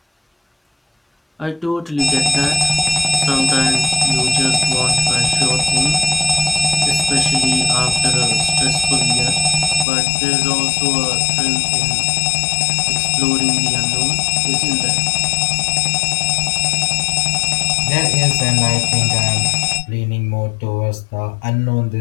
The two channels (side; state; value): right; drops out; at 9.9 s